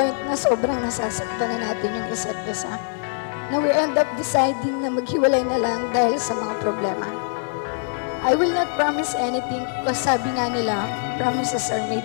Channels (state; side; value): silent; right; 57 dB below the other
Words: na sobrang nasasaktan na natin yung isa't isa. Na we end up deciding na maghiwalay na lang dahil sa mga problema. I will not promise anything because sabi nga nila, promises are